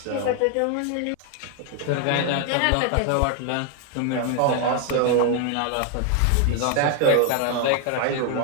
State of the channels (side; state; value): both; different; correlation 0.01